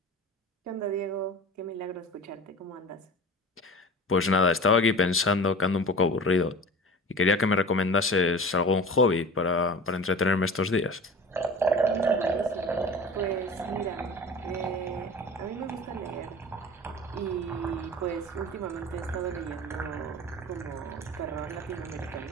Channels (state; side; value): normal; both; correlation 0.37